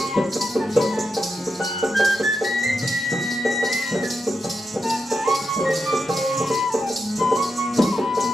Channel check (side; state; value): both; normal; correlation 0.86